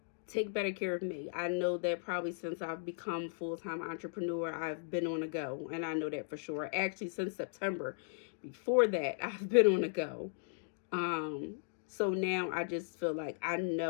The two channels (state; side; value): silent; right; digital silence